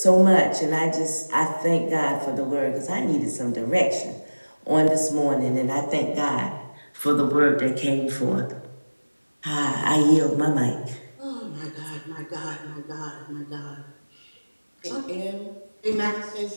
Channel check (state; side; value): inverted; both; correlation -1.00